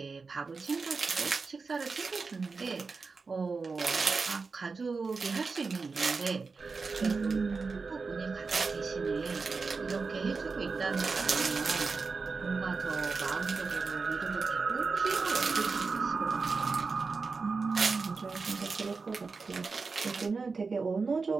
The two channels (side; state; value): left; quieter; 4.5 dB